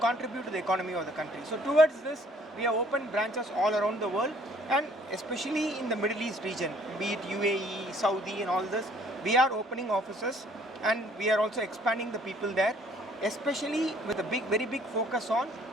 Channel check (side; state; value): both; normal; correlation 0.60